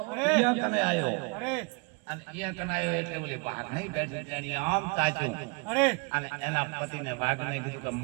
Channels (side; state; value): left; quieter; 29.5 dB